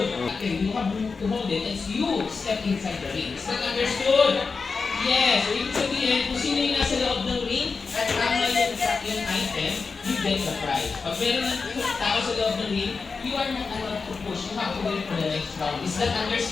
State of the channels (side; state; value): right; quieter; 4.7 dB